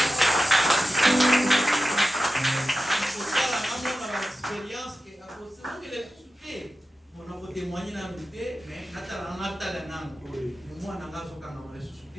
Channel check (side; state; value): both; normal; correlation 0.93